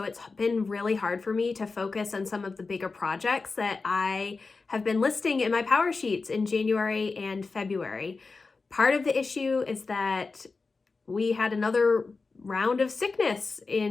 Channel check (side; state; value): right; quieter; 4.1 dB